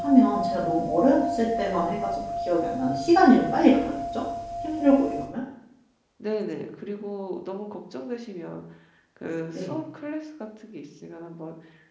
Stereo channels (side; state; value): both; identical; correlation 1.00